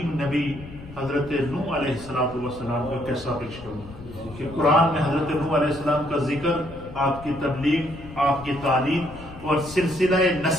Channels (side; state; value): left; noise; rumble, 16 dB below the sound